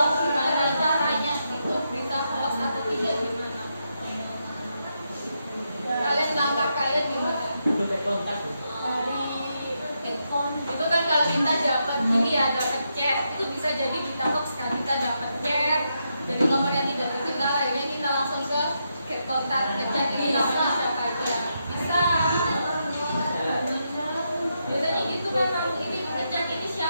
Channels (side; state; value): both; inverted; correlation -0.83